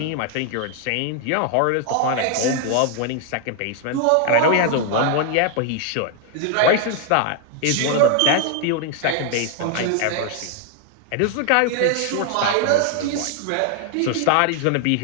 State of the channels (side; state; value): both; different; correlation 0.00